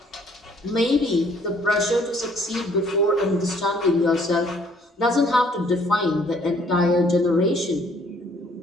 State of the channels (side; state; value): both; normal; correlation 0.62